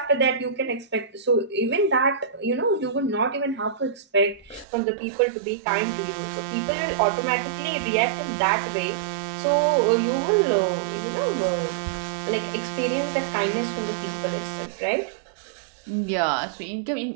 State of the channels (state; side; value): drops out; left; at 4.7 s